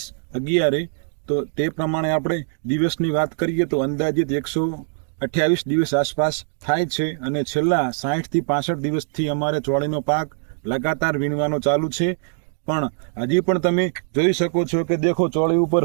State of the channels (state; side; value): silent; left; 64 dB below the other